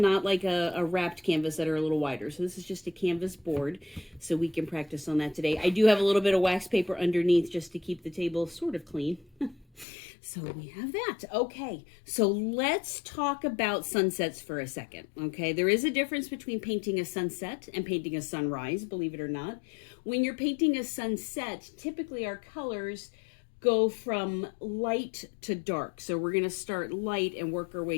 like a wrapped canvas that are a little wider. So this is just a canvas board, so we can practice on that today. I do have a little bit of wax paper underneath just to keep the table sort of clean. So we have that. Okay, so let's talk about sunsets for a second, okay? There is a difference between painting a sunset and painting a sunrise, believe it or not. When you're painting a sunset, typically our colors go from light to dark. So we're gonna start light and work our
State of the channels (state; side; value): drops out; right; at 9.9 s